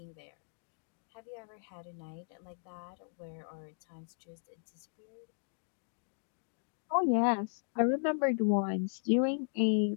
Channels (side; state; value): right; silent; digital silence